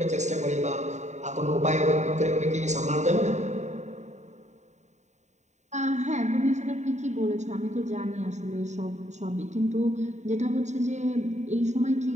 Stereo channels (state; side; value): late; left; 0.34 ms